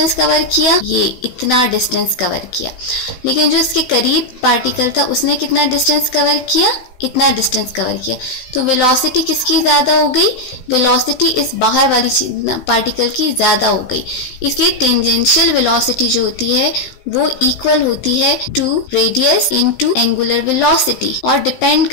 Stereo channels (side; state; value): right; late; 16 ms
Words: कवर किया, ये इतना डिस्टेंस कवर किया। लेकिन जो इसके करीब पार्टिकल था उसने कितना डिस्टेंस कवर किया, इतना डिस्टेंस कवर किया। तो वेलोसिटी किसकी ज़्यादा हो गई, वेलोसिटी इस बाहर वाली पार्टिकल की ज़्यादा हो गई। इसलिए टेंजेंशियल वेलोसिटी जो होती है वो इक्वल होती है to radius into angular velocity, और डिपेंड